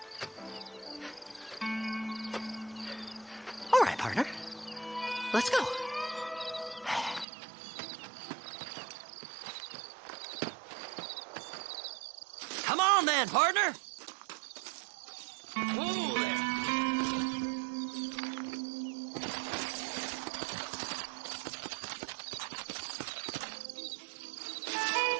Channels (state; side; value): drops out; left; at 7.2 s